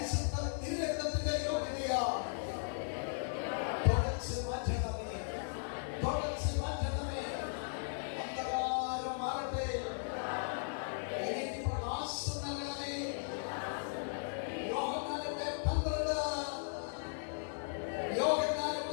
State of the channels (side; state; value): right; silent; digital silence